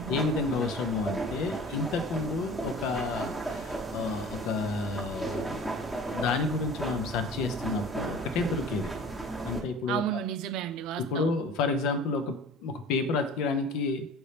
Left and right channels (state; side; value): normal; both; correlation 0.42